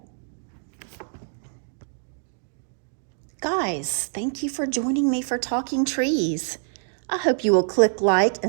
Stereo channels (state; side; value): silent; left; digital silence